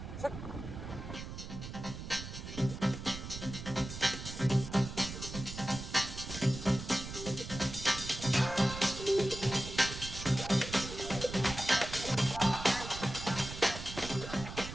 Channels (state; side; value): noise; right; rumble, 9 dB below the sound